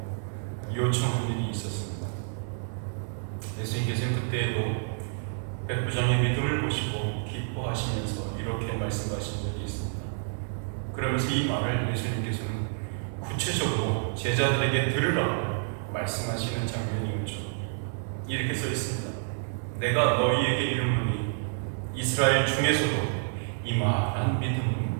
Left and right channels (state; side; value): silent; left; digital silence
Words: 요청한 일이 있었습니다. 예수님께서는 그때에도 백부장의 믿음을 보시고 기뻐하시면서 이렇게 말씀하신 적이 있습니다. 그러면서 이 말을 예수님께서는 구체적으로 제자들에게 들으라고 말씀하시는 장면이 있죠. 이렇게 써 있습니다. 내가 너희에게 이르노니 이스라엘 중에서도 이만한